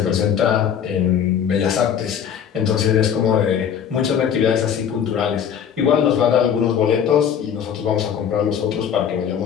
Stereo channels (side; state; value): right; quieter; 8.3 dB